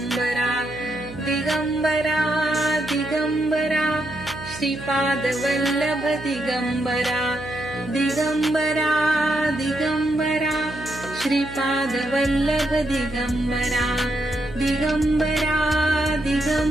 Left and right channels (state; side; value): noise; right; hum, 14 dB below the sound